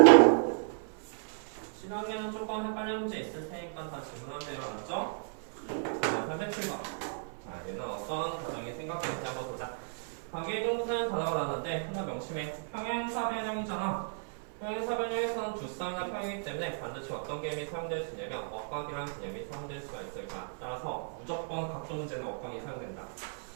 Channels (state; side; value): silent; left; 55 dB below the other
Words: 실학년은 조금 헷갈리는 문제 있을 테니까 다 질문하세요. 알았죠? 자, 307번. 자, 얘는 어떤 과정이 생각되는지 한번 보자. 관계동사는 단어가 나왔는데 하나 명심해. 평행사 변형이잖아. 평행사 변형에서는 두 쌍이나 평이기 때문에 반드시 어떤 개념이 사용될 수 있냐면 억각이라는 개념이 사용될 수가 있으니까 따라서 무조건 각도 문제는 억각이 사용된다.